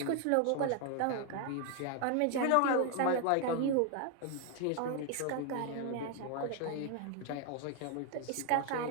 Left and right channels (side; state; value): both; different; correlation 0.00